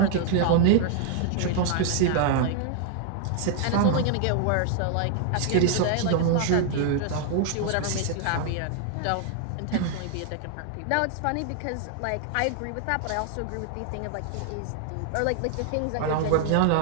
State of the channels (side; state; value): both; different; correlation 0.00